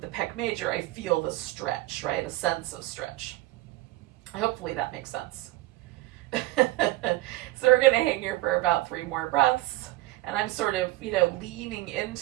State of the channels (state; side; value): quieter; left; 18.1 dB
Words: the pec major, I feel the stretch, right? A sense of stretch. Hopefully that makes sense. So we're gonna hang here for about 3 more breaths, and I'm sort of, leaning